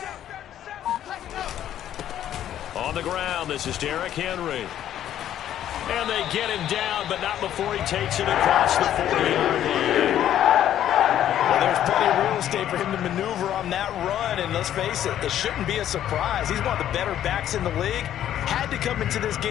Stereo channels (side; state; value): right; quieter; 11.2 dB